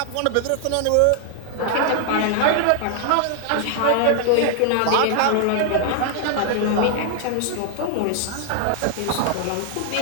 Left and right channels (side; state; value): both; different; correlation 0.00